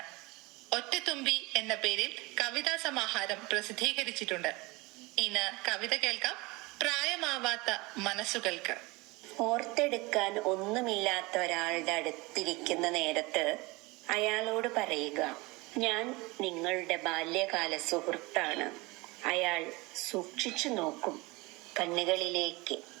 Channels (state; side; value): quieter; left; 23.9 dB